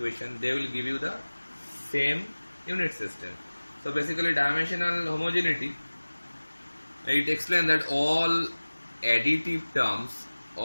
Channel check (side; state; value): both; inverted; correlation -1.00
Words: they will give you the same unit system. So basically dimensional homogeneity, it explains that all additive terms,